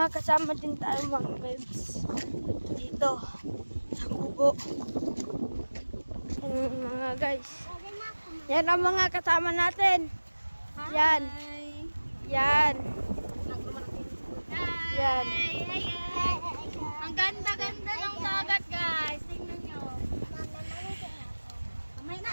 kasama din tayo mga megs. Dito. Sa kubo. Yan mga guys. Yan ang mga kasama natin. Yan. Yan. Yan. Ang ganda-ganda ng dagat, guys. Tingnan nyo.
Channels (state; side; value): inverted; both; correlation -1.00